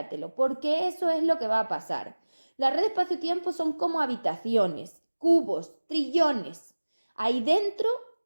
porque eso es lo que va a pasar. La red espacio-tiempo son como habitaciones, cubos, trillones. Ahí dentro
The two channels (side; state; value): both; inverted; correlation -1.00